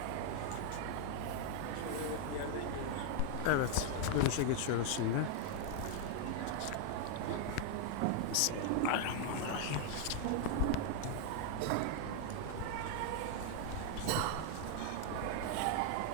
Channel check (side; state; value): both; different; correlation 0.00